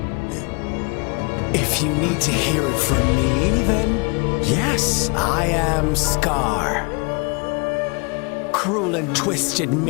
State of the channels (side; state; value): right; quieter; 30.9 dB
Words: If you need to hear it from me, then yes, I am Scar. Cruel and twisted